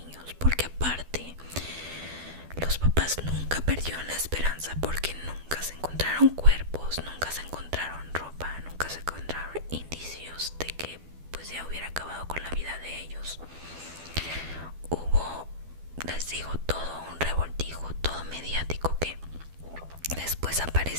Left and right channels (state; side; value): late; left; 12 ms